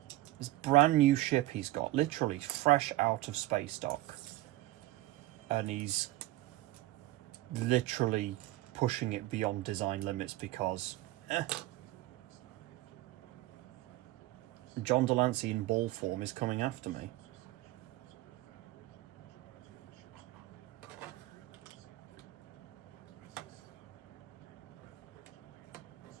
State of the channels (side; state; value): left; quieter; 17.1 dB